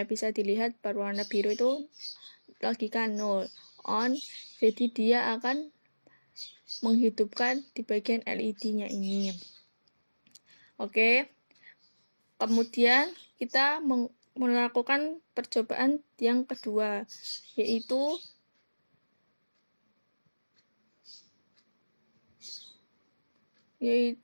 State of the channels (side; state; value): both; inverted; correlation -1.00